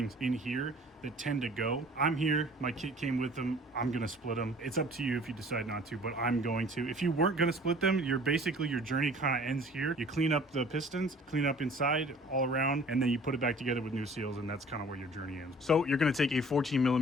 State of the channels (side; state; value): both; normal; correlation 0.50